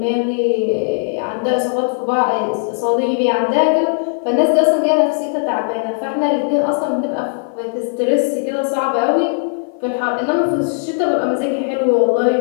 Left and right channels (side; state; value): right; silent; 55 dB below the other